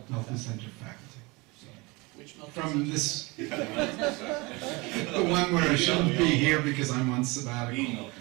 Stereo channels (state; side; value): quieter; left; 25.3 dB